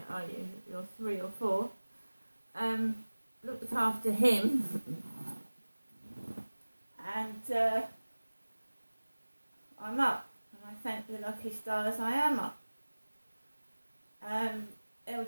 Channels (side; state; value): both; inverted; correlation -1.00